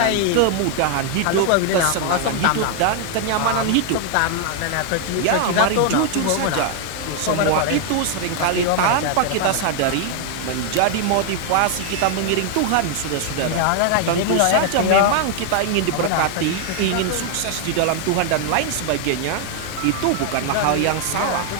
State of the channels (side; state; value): both; different; correlation 0.00